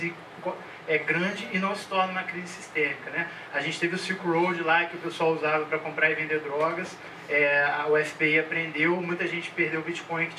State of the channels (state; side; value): identical; both; correlation 1.00